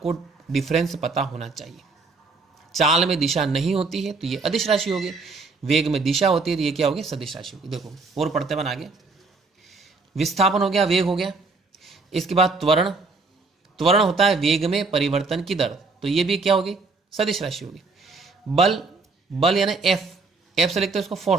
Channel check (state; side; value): quieter; left; 4.0 dB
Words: डिफरेंस पता होना चाहिए। चाल में दिशा नहीं होती है तो ये अदिश राशि होगी, वेग में दिशा होती है तो ये क्या होगी? सदिश राशि होगी। देखो और पढ़ते बन आगे। विस्थापन हो गया, वेग हो गया। इसके बाद त्वरण। त्वरण होता है वेग में परिवर्तन की दर, तो ये भी क्या होगी? सदिश राशि होगी। बल, बल यानी एफ, एफ से लिखते हैं उसको